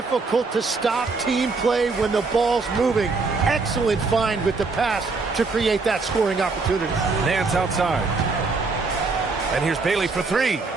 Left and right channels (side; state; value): left; quieter; 4.1 dB